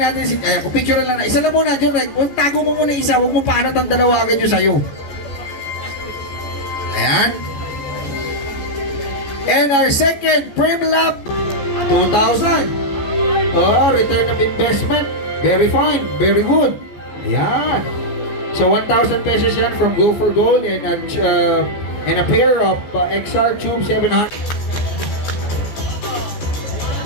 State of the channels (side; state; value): right; late; 15 ms